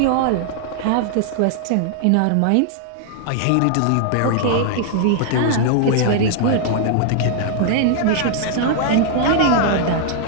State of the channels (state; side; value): different; both; correlation -0.01